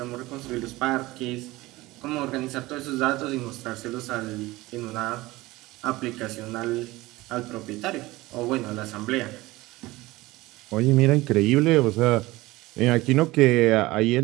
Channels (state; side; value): quieter; left; 19.5 dB